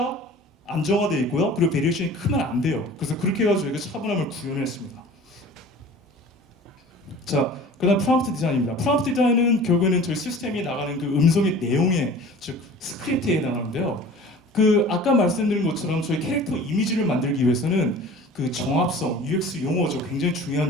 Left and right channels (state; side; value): normal; both; correlation 0.43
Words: 안정화되어 있고요. 그리고 베리에이션이 크면 안 돼요. 그래서 그렇게 해가지고 저희가 차분함을 구현했습니다. 자, 그다음 프롬프트 디자인입니다. 프롬프트 디자인은 결국에는 저희 시스템이 나가는 그 음성의 내용에, 즉 스크립트에 해당하는데요. 그 아까 말씀드린 것처럼 저희 캐릭터 이미지를 만들기 위해서는 그 정합성, UX 용어죠. 굉장히